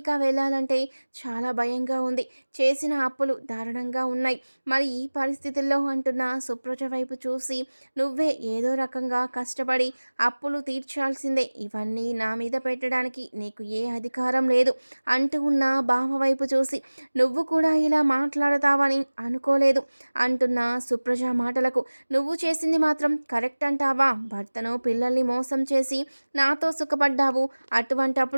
వెళ్ళాలంటే చాలా భయంగా ఉంది. చేసిన అప్పులు దారుణంగా ఉన్నాయి. మరి ఈ పరిస్థితుల్లో అంటున్న సుప్రజ వైపు చూసి నువ్వే ఏదో రకంగా కష్టపడి అప్పులు తీర్చాల్సిందే. ఇవన్నీ నా మీద పెట్టడానికి నీకు ఏ అధికారం లేదు అంటూ ఉన్న బావ వైపు చూసి నువ్వు కూడా ఇలా మాట్లాడతావని అనుకోలేదు అంటున్న సుప్రజ మాటలకు నువ్వు చేసింది మాత్రం కరెక్ట్ అంటావా? భర్తను పిల్లల్ని మోసం చేసి నాతో సుఖపడ్డావు.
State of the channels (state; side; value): inverted; both; correlation -1.00